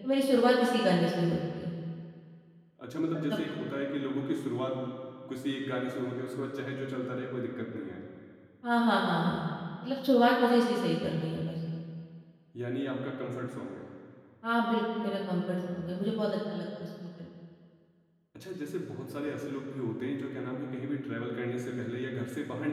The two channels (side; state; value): both; identical; correlation 1.00